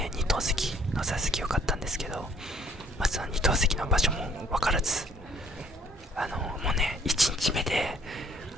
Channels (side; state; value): both; normal; correlation 0.61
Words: 2等席の座席よかったんですけど、その2等席の場所も分からず、もうね1日目で